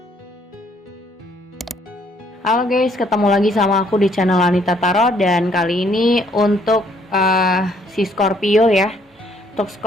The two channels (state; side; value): normal; both; correlation 0.66